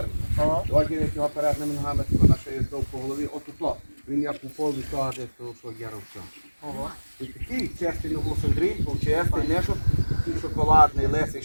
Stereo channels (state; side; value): inverted; both; correlation -1.00